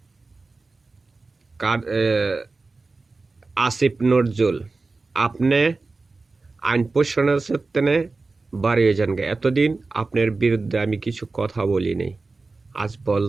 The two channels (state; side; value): quieter; left; 3.7 dB